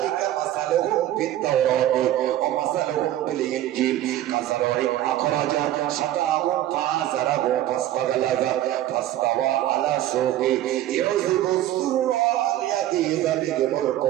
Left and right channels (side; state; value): left; quieter; 13.4 dB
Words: مثلهم في التوراة ومثلهم في الإنجيل كزرع أخرج شطأه فآزره فاستغلظ فاستوى على سوقه يعجب الزراع ليغيظ بهم